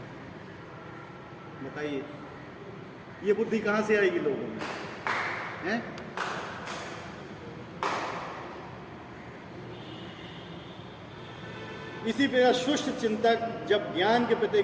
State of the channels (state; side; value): identical; both; correlation 1.00